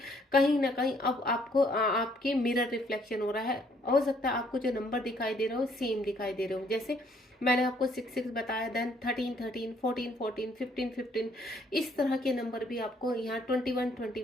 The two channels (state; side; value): normal; both; correlation 0.65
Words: कहीं ना कहीं अब आपको आपके मिरर रिफ्लेक्शन हो रहा है। हो सकता है आपको जो नंबर दिखाई दे रहे हो सेम दिखाई दे रहे हो, जैसे मैंने आपको 6-6 बताया, देन 13-13, 14-14, 15-15, इस तरह के नंबर भी आपको यहाँ